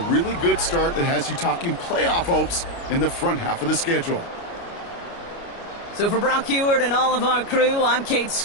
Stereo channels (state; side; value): late; right; 29 ms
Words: really good start that has you talking playoff hopes in the front half of the schedule. So for Brock Heward and all of our crew, I'm Kate